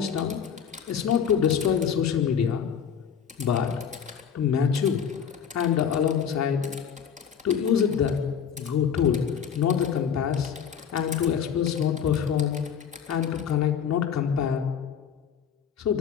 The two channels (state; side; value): quieter; right; 7.7 dB